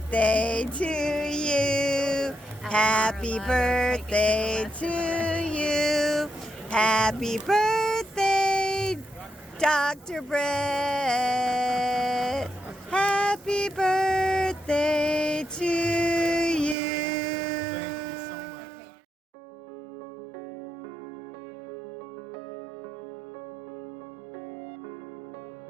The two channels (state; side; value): drops out; left; at 16.8 s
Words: to you. Happy birthday to you. Happy birthday, Dr. Brett. Happy birthday to you.